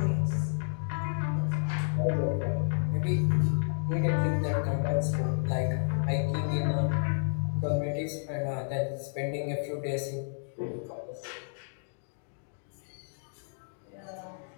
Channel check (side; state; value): right; silent; digital silence